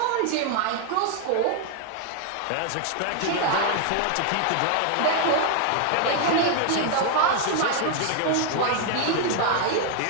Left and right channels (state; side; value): different; both; correlation 0.00